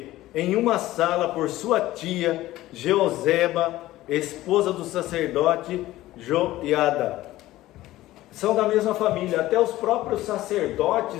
Em uma sala por sua tia, Jeozeba, esposa do sacerdote Joiada. São da mesma família, até os próprios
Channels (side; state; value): right; quieter; 16.1 dB